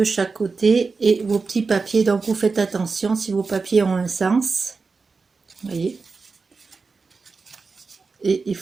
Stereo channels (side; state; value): left; quieter; 4.4 dB